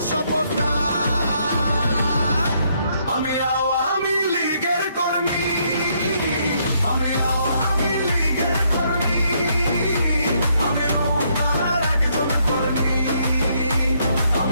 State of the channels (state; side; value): inverted; both; correlation -0.72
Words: শপথটা। আমি আওয়ামী লীগের কর্মী, আমি আওয়ামী লীগের কর্মী, আমি নৌকার একজন কর্মী,